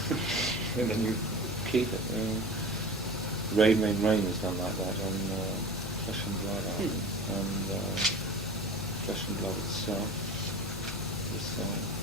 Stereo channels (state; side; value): normal; both; correlation 0.36